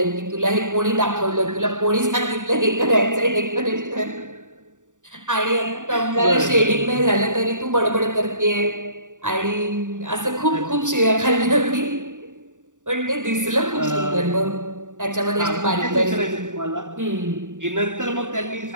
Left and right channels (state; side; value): late; left; 0.86 ms